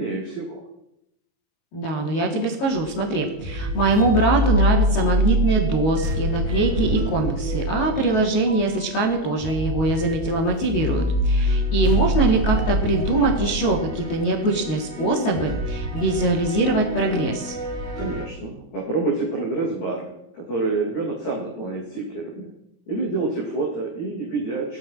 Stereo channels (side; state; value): right; late; 22 ms